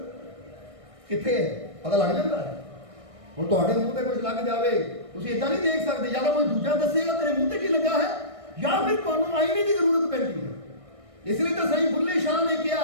कित्थे है, पता लग जाता है। हुण तुहाडे मूँह ते कुछ लग जावे, तुसीं इदां नहीं देख सकदे, या तो कोई दूजा दसेगा तेरे मूँह ते की लगा है, या फिर तुहानू आईने की जरूरत पैंदी है। इसलिए तो सही बुल्ले शाह ने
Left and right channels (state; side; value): late; left; 1.6 ms